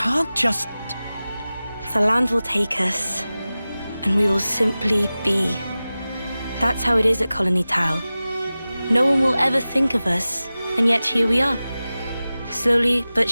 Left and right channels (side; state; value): both; inverted; correlation -0.96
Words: just... The land will take us, and we will simply be. That's how it is at Colony Tau. No one will ever think of us, and yet here we are. Slowly but